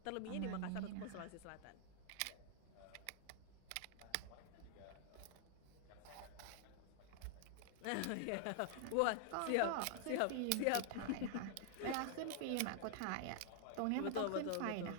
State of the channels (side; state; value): both; different; correlation 0.00